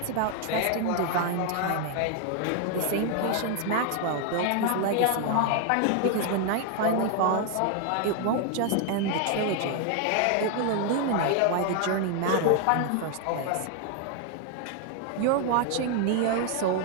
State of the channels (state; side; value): different; both; correlation 0.00